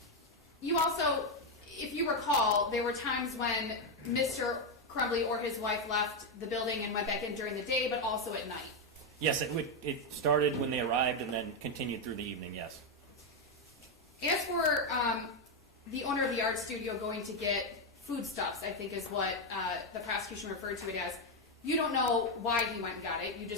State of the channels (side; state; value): both; normal; correlation 0.04